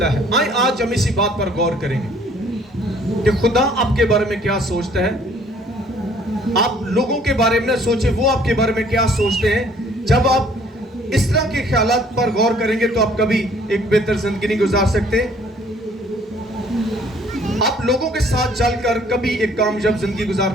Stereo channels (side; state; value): both; normal; correlation 0.59